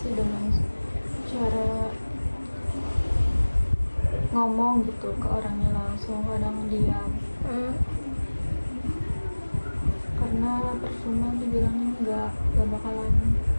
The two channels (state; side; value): inverted; both; correlation -1.00